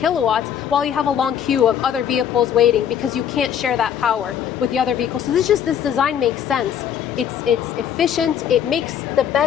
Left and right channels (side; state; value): right; quieter; 8.9 dB